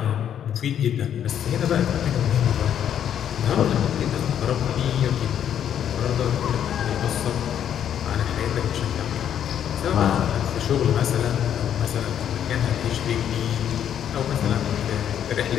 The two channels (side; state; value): right; quieter; 9.5 dB